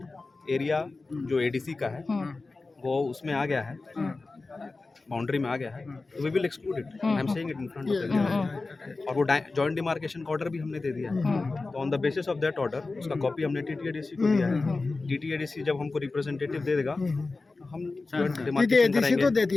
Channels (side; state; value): right; quieter; 3.6 dB